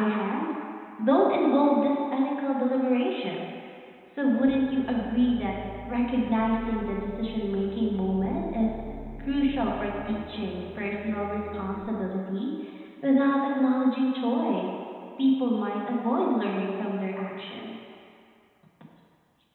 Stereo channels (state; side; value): identical; both; correlation 1.00